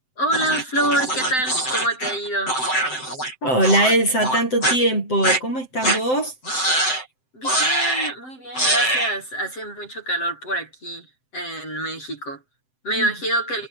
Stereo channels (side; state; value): right; late; 7.7 ms